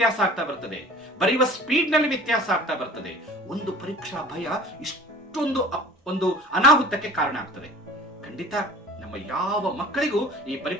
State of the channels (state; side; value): normal; both; correlation 0.43